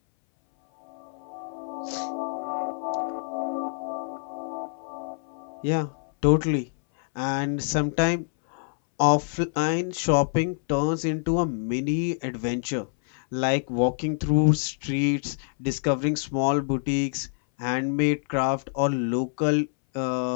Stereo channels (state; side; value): silent; right; 61 dB below the other